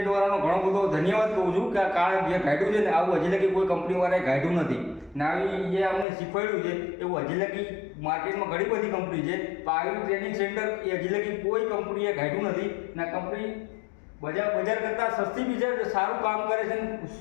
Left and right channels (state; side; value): drops out; right; at 6.1 s